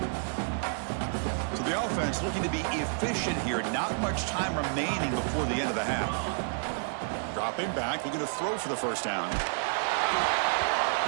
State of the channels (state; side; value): silent; left; digital silence